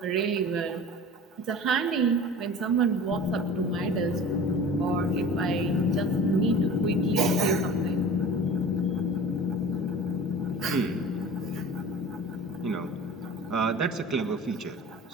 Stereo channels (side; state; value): both; normal; correlation 0.39